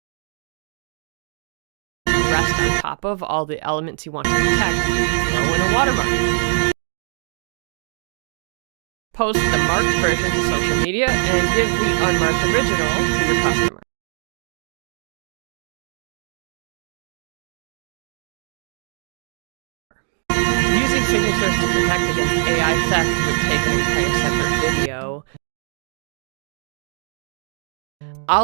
rest on top of all the elements you want to protect, throw in a watermark. Post the marked version to social media and give the unmarked original to your customer. Using signatures to protect against AI theft would take an entire separate video.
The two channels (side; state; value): left; silent; 63 dB below the other